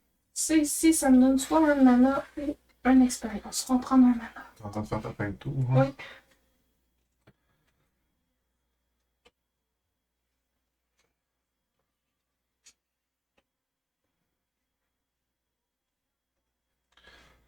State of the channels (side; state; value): both; identical; correlation 1.00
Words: Ça ici, ça me donne soit un mana ou une expérience. On va prendre un mana. T'es en train de faire ta fin de tour. Hein? Oui.